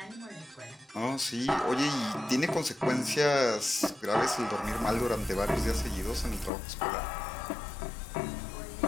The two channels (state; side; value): drops out; right; at 6.5 s